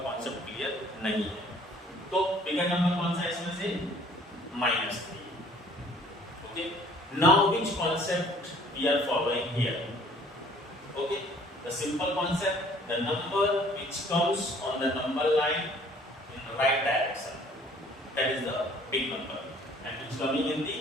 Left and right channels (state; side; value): normal; both; correlation 0.55